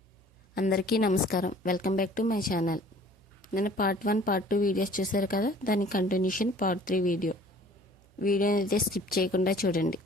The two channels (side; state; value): right; noise; hum, 30 dB below the sound